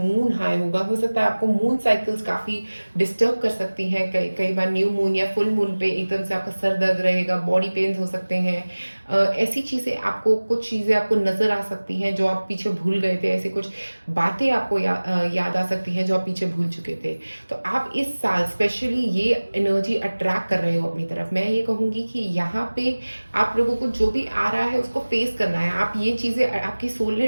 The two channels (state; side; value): inverted; both; correlation -1.00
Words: हाई होगा, हो सकता है आपको मून साइकिल्स काफी डिस्टर्ब कर सकती हैं। कई बार न्यू मून या फुल मून पे एकदम से आपका सर दर्द रहेगा, बॉडी पेन्स हो सकते हैं। ऐसी चीजें आपको, कुछ चीजें आपको नजर आ सकती हैं जो आप पीछे भूल गए थे, ऐसी कुछ बातें आपको याद आ सकती हैं जो आप पीछे भूल चुके थे। तो आप इस साल स्पेशली ये एनर्जी अट्रैक्ट कर रहे हो अपनी तरफ। मैं ये कहूंगी कि यहाँ पे आप लोगों को जो भी आ रहा है उसको फेस करना है। आप ये चीजें, आपकी सोल